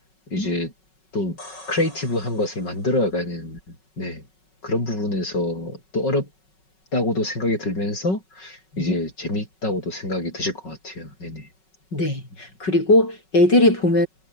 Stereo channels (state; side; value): late; right; 5.4 ms